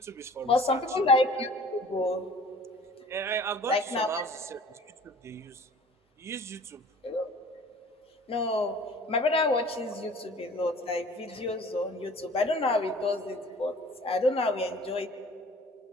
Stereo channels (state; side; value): normal; both; correlation 0.47